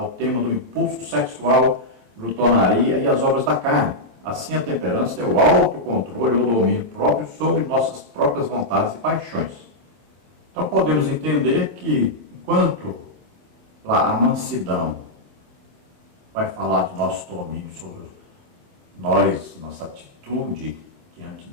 tema do impulso sexual, glutonaria e as obras da carne. Assim, a temperança é o autocontrole ou domínio próprio sobre nossas próprias vontades e paixões. Então, podemos entender que, enquanto lá a mansidão vai falar do nosso domínio sobre nós, nossa atitude diante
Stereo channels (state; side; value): late; left; 25 ms